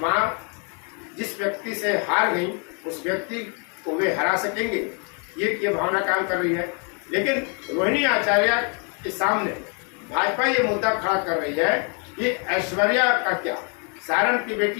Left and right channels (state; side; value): quieter; right; 38.7 dB